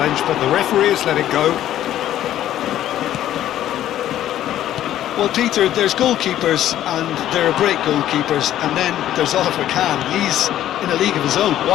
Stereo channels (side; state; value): right; quieter; 12.3 dB